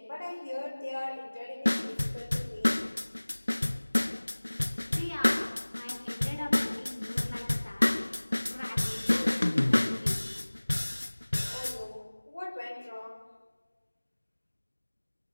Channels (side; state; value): both; inverted; correlation -1.00